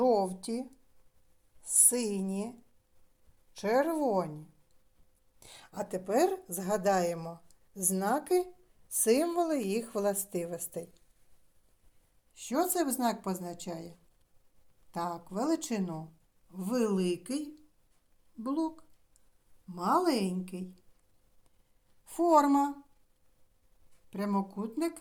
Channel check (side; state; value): both; identical; correlation 1.00